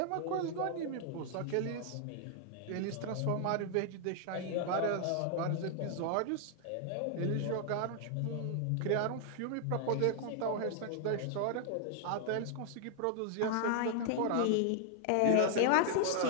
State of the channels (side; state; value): both; different; correlation 0.00